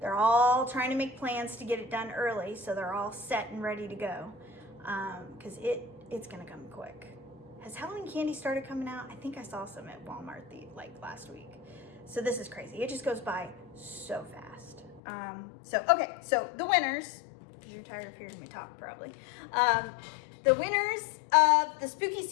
all trying to make plans to get it done early, so they're all set and ready to go, because it's gonna come quick. Has Halloween candy started coming out? I think I saw some at Walmart last week. So this is crazy. It just goes by so fast. So the winners, because you're tired of hearing me talk probably. The winners of the Spooky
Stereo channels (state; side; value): drops out; right; at 15.0 s